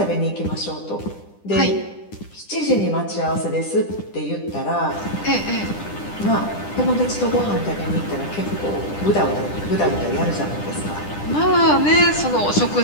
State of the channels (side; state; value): right; late; 10 ms